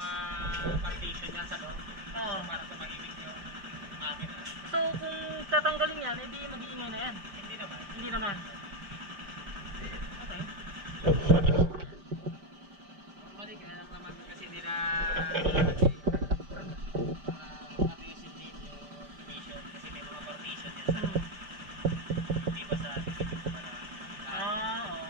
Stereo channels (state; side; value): late; left; 5.1 ms